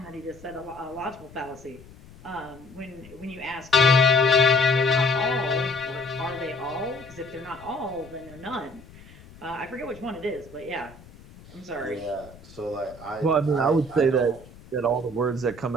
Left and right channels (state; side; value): noise; left; rumble, 21 dB below the sound